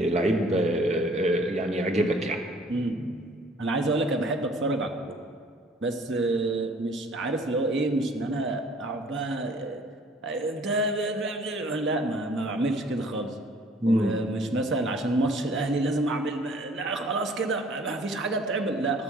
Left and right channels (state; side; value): normal; both; correlation 0.55